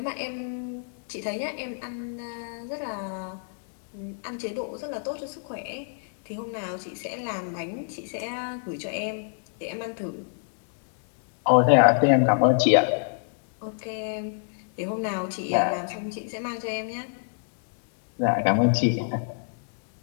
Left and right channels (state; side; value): silent; right; digital silence